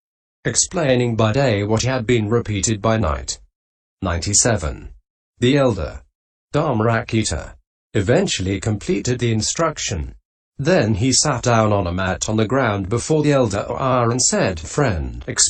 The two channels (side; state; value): both; identical; correlation 1.00